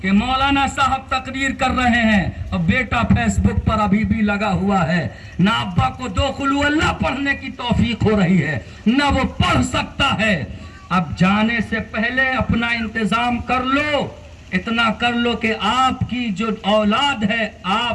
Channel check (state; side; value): identical; both; correlation 1.00